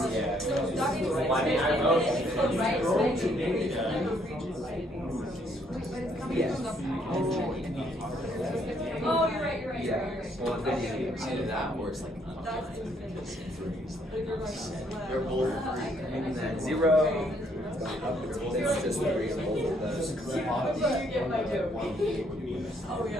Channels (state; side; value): normal; both; correlation 0.69